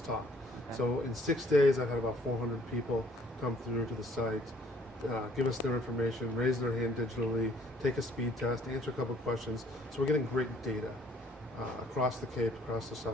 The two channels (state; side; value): normal; both; correlation 0.61